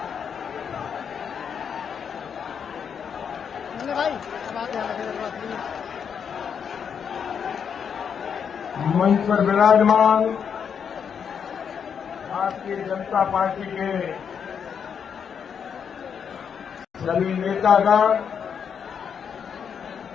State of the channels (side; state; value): right; quieter; 7.2 dB